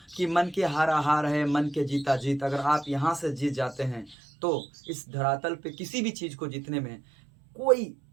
कि मन के हारा हार है मन के जीता जीत। अगर आप यहाँ से जीत जाते हैं तो इस धरातल पे किसी भी चीज को जीतने में कोई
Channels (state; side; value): drops out; left; at 4.2 s